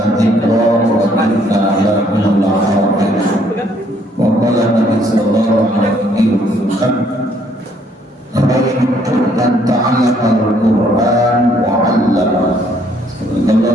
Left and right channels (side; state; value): both; normal; correlation 0.66